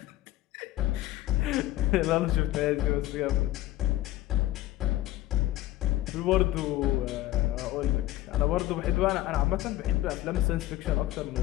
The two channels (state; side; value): quieter; right; 15.4 dB